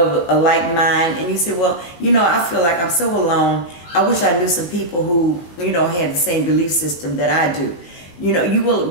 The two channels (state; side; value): late; right; 18 ms